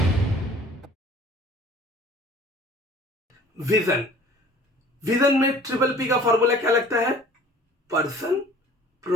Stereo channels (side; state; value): both; normal; correlation 0.49